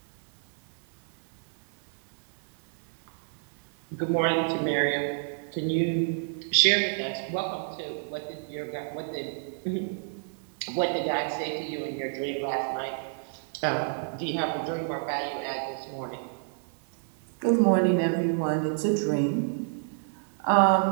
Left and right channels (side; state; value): left; silent; 58 dB below the other